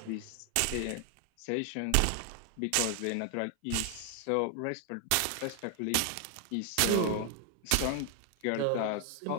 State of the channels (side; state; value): both; different; correlation 0.00